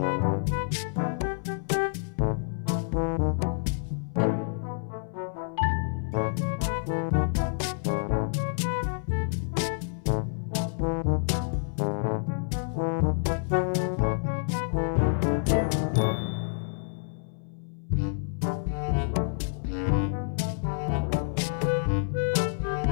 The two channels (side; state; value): right; silent; 59 dB below the other